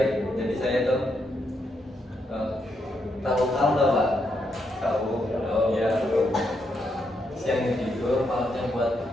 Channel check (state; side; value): normal; both; correlation 0.80